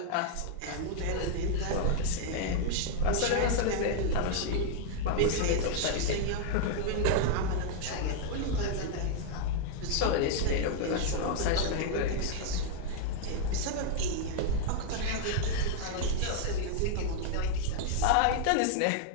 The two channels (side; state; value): both; different; correlation 0.00